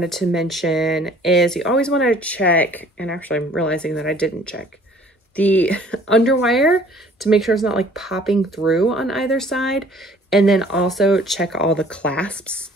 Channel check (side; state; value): both; normal; correlation 0.54